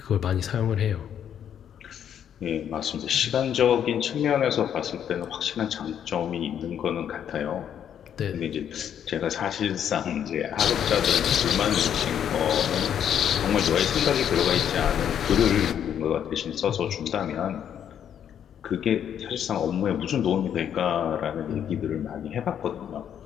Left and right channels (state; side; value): quieter; right; 9.2 dB